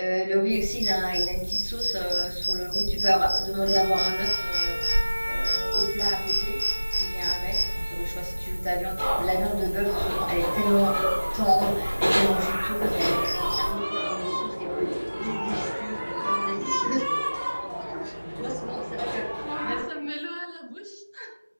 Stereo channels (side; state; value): both; inverted; correlation -1.00